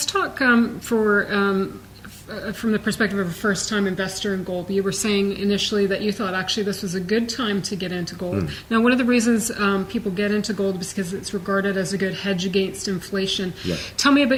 talk from the perspective of a first-time investor in gold. You were saying initially that you thought actually this was a good time to get into gold. Now, one of the reasons people get into gold is because it's regarded as a good hedge against inflation. Yeah. Tell me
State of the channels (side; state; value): both; identical; correlation 1.00